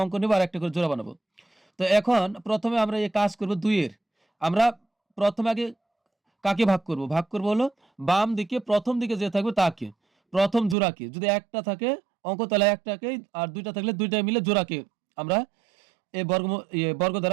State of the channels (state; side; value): drops out; left; at 10.8 s